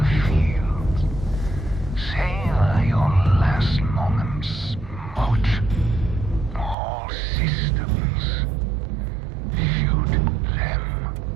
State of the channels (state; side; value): drops out; left; at 6.8 s